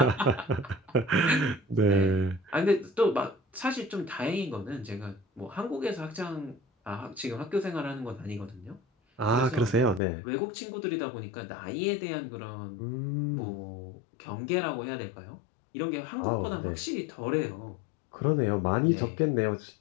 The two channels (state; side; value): drops out; right; at 10.0 s